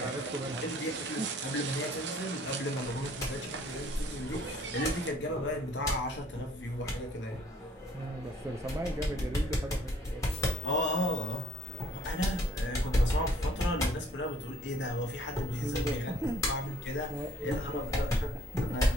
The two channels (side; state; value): both; normal; correlation 0.59